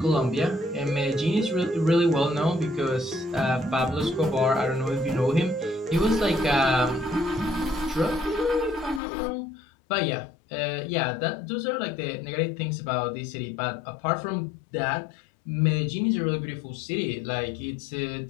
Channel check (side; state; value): right; drops out; at 9.0 s